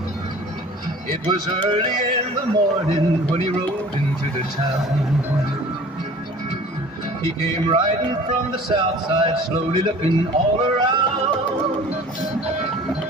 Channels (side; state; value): both; normal; correlation 0.46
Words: It was early in the morning when he rode into the town. He came riding from the south side, slowly looking all around.